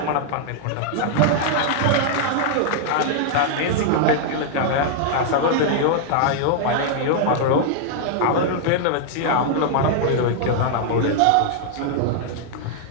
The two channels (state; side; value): different; both; correlation -0.01